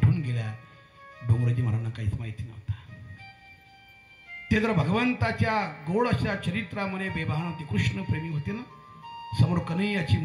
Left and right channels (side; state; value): both; identical; correlation 1.00